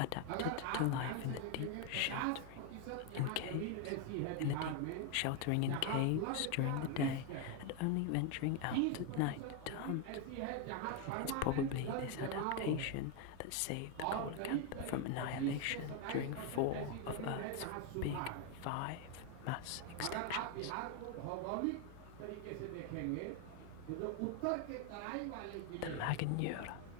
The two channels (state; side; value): different; both; correlation 0.01